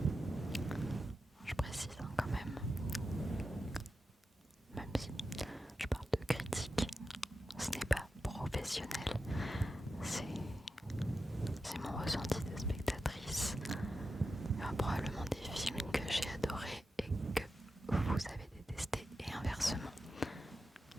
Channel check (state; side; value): normal; both; correlation 0.90